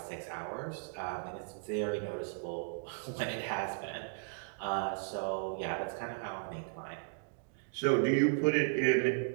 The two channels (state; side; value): silent; left; digital silence